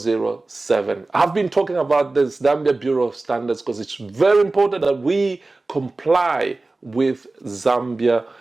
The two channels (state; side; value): quieter; left; 3.2 dB